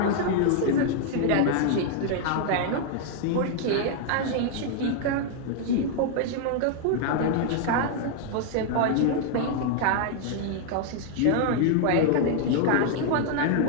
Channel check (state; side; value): different; both; correlation 0.00